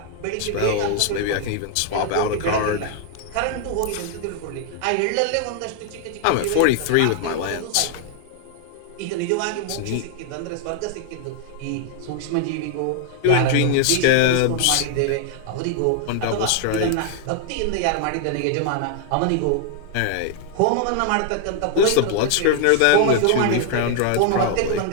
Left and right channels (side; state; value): both; different; correlation 0.00